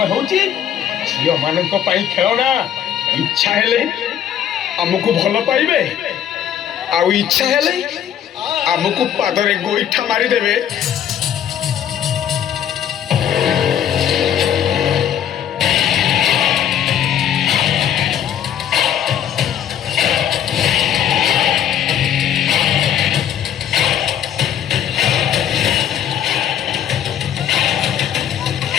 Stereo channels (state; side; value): quieter; right; 9.8 dB